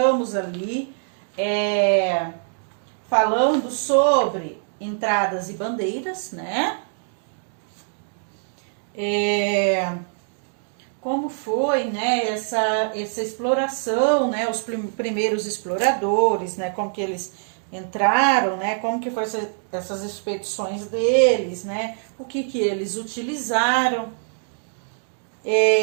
ali falando sobre entradas e bandeiras, né? Como foi, né, essa exploração, né, os primeiros exploradores, né, como que eles entraram, né, como que foi essas expedições deles, né, o que eles utilizaram,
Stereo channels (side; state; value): left; silent; digital silence